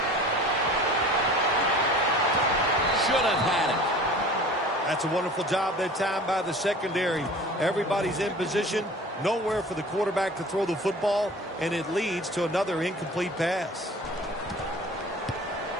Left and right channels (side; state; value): both; normal; correlation 0.43